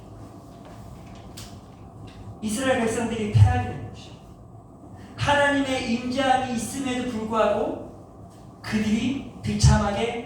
이스라엘 백성들이 패하게 된 것이야. 하나님의 임재함이 있음에도 불구하고 그들이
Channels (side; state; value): both; identical; correlation 1.00